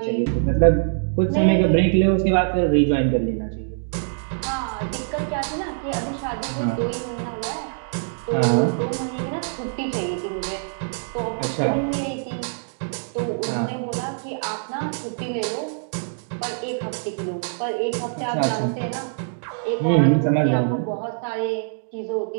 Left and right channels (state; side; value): silent; left; digital silence